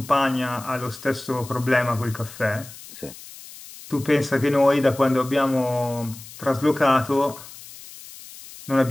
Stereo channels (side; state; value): left; noise; hiss, 17 dB below the sound